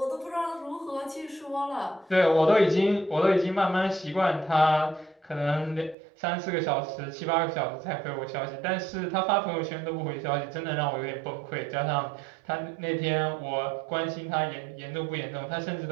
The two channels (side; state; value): left; drops out; at 6.0 s